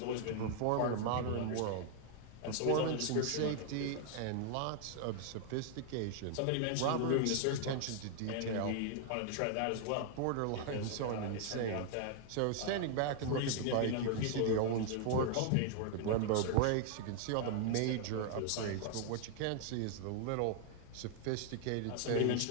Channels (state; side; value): different; both; correlation 0.00